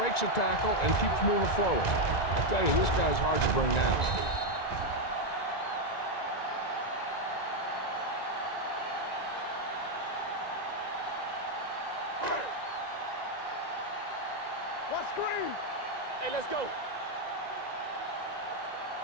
a tackle and keeps moving forward. I tell you, this guy's hard to bring down. What screen? Hey, let's go.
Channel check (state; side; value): late; right; 1.9 ms